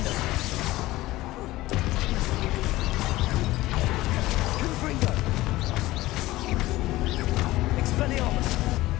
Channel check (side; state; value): right; quieter; 17.7 dB